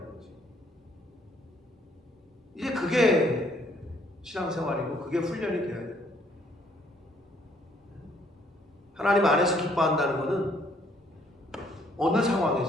이제 그게 신앙생활이고 그게 훈련이 돼야 돼요. 하나님 안에서 기뻐한다는 것은 어느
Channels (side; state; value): both; normal; correlation 0.65